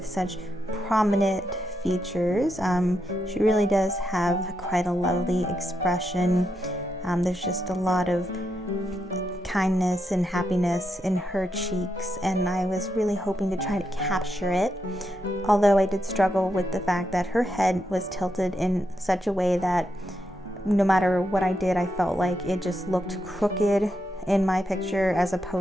such prominent features. She really does have quite a lovely expression. There's just a lot of kindness and happiness in her cheeks, and I was really hoping to try to capture it, although I did struggle with the fact that her head was tilted in such a way that no matter what I did, I felt like it just looked crooked in my picture as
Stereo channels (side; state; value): both; normal; correlation 0.83